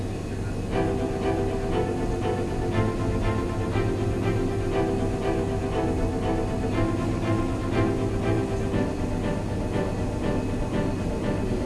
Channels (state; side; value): identical; both; correlation 1.00